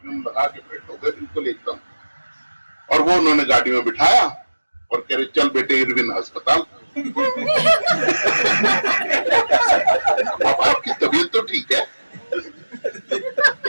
लगा के फिट हो गए बिल्कुल एकदम। और वो उन्होंने गाड़ी में बिठाया और कह रहे चल बेटे इरविन अस्पताल। पापा आपकी तबीयत तो ठीक है?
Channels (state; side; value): inverted; both; correlation -1.00